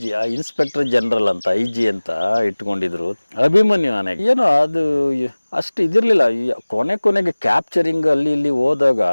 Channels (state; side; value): inverted; both; correlation -1.00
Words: ಇನ್ಸ್ಪೆಕ್ಟರ್ ಜನರಲ್ ಅಂತ IG ಅಂತ ಇಟ್ಕೊಂಡಿದ್ರು. ಅಭಿಮನ್ಯು ಆನೆ ಏನೋ ಅದು ಅಷ್ಟು ಇದಿರ್ಲಿಲ್ಲ. ಕೊನೆಗೆ ಕ್ಯಾಪ್ಚರಿಂಗ್ ಅಲ್ಲಿ ಇಲ್ಲಿ ಹೋದಾಗ